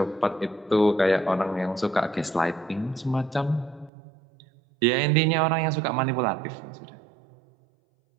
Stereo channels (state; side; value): drops out; left; at 3.9 s